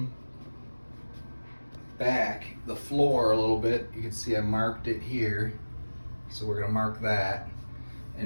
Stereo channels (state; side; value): inverted; both; correlation -1.00